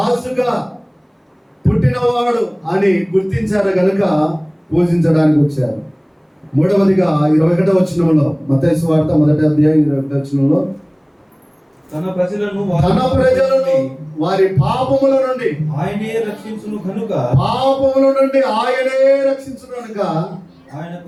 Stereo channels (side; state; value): both; identical; correlation 1.00